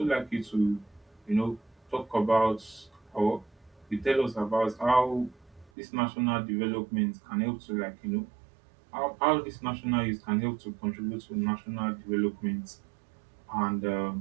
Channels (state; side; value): drops out; left; at 5.7 s